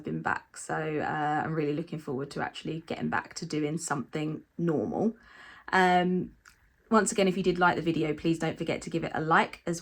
been back, so I'm really looking forward to actually getting back to doing something normal. Once again, if you did like the video, please don't forget to give it a like,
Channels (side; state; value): both; identical; correlation 1.00